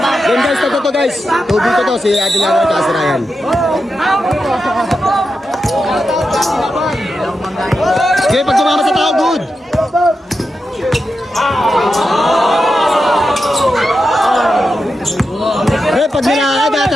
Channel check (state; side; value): normal; both; correlation 0.88